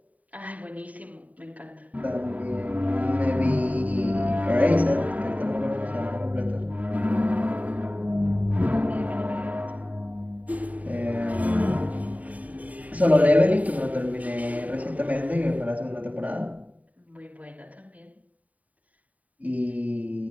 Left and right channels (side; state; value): left; late; 0.071 ms